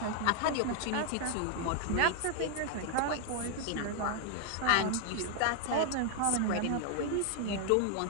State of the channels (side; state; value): both; different; correlation 0.00